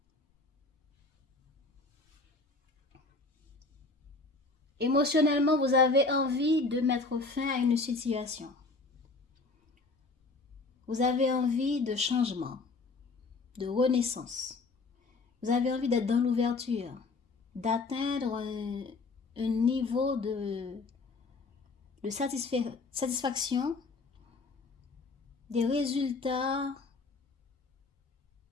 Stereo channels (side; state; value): right; quieter; 3.7 dB